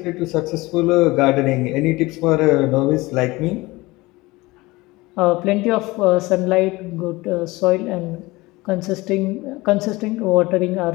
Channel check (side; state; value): right; quieter; 21.3 dB